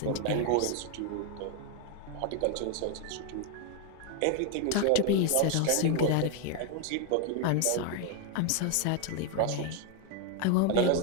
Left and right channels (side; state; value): both; different; correlation 0.01